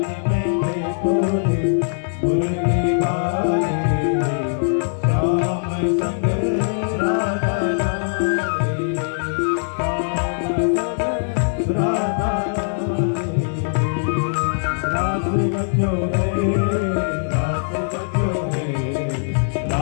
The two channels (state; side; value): silent; right; 59 dB below the other